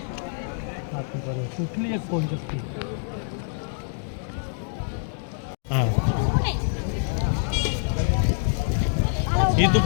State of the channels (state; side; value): silent; right; digital silence